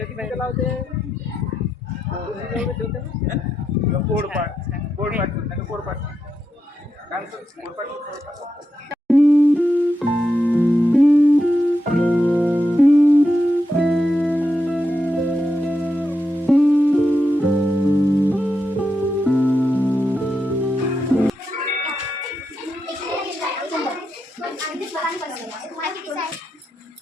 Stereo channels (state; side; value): normal; both; correlation 0.85